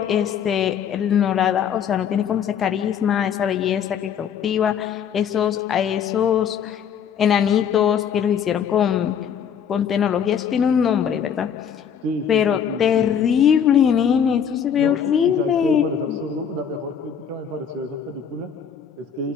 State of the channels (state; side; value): quieter; right; 8.0 dB